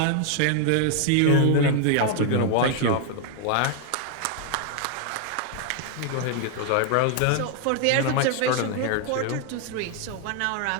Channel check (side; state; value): both; different; correlation 0.00